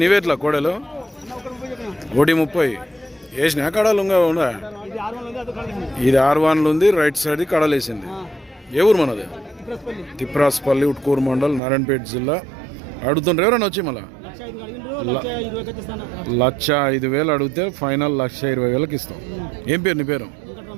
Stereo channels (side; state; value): left; drops out; at 11.6 s